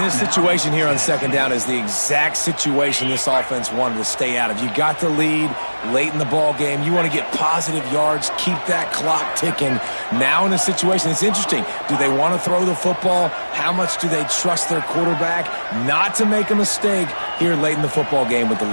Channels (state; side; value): inverted; both; correlation -1.00